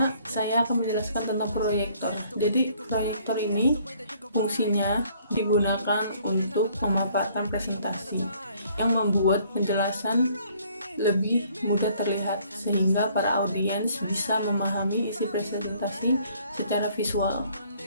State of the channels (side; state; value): both; inverted; correlation -0.61